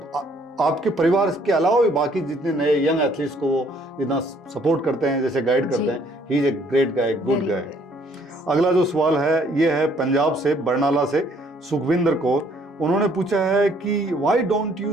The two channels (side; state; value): both; normal; correlation 0.63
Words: आपके परिवार के अलावा भी बाकी जितने नए यंग एथलीट्स को वो जितना सपोर्ट करते हैं, जैसे गाइड करते हैं। He is a great guy, good guy. अगला जो सवाल है ये है पंजाब से, बरनाला से, सुखविंदर कौर। उन्होंने पूछा है कि why don't